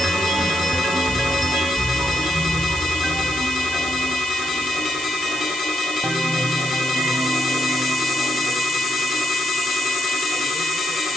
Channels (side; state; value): right; noise; hiss, 9 dB below the sound